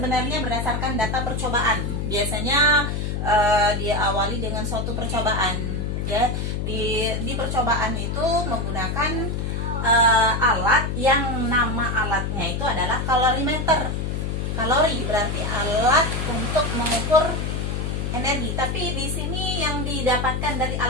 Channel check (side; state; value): left; noise; hum, 2 dB below the sound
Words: berdasarkan data percobaan. Biasanya diawali dengan suatu percobaan ya. Di percobaan itu menggunakan alat yang nama alatnya itu adalah kalorimeter. Kalori berarti alat untuk mengukur energi. Tapi di sini yang didapatkan dari